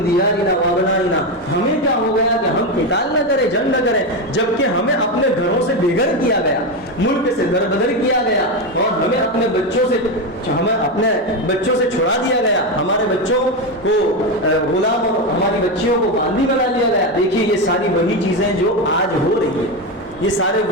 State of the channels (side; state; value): both; normal; correlation 0.12